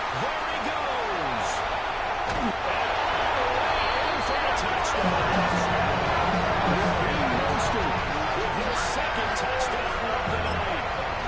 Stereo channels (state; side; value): identical; both; correlation 1.00